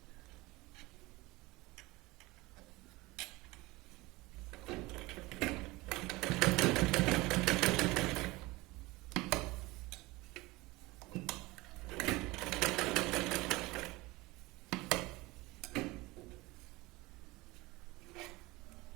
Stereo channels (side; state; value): left; quieter; 21.6 dB